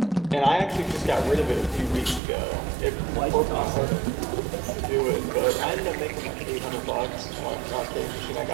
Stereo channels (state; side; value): drops out; left; at 2.2 s